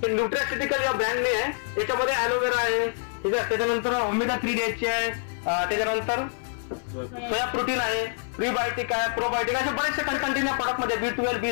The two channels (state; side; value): silent; right; 61 dB below the other